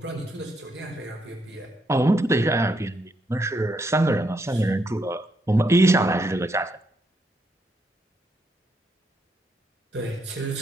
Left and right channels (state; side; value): normal; both; correlation 0.77